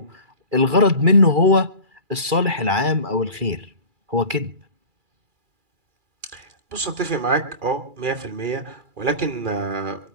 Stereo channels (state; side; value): late; left; 2.4 ms